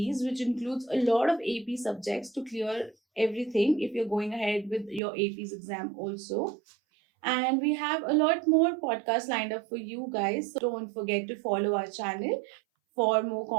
which includes a lot of AP subjects to clear everything if you're going ahead with your APs exam also. And we have a lot more podcasts lined up for you guys. So don't forget to follow our channel for more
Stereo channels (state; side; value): drops out; left; at 5.0 s